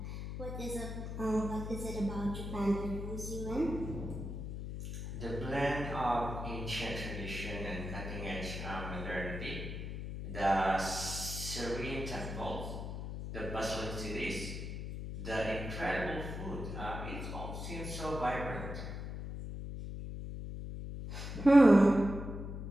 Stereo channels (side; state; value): left; noise; hum, 6 dB below the sound